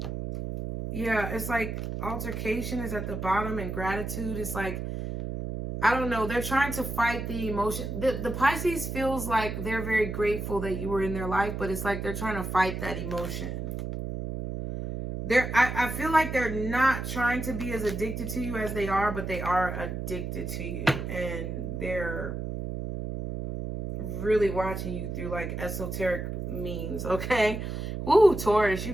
Yeah, it's like altercation is at the bottom and gratitude is like, I don't know. They're trying to fight the emotion. The Pisces feels like they're very grateful that you were in their life, but it's like they're trying to fight that emotion. I feel like they're not trying to be as addicted to you as they are, but they are addicted to you. And they're really watching you through like esoteric means, okay? Woo, Taurus, you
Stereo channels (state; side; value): noise; right; hum, 4 dB below the sound